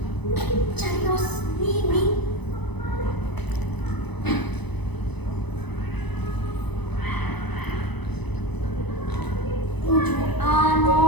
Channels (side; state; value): right; late; 0.99 ms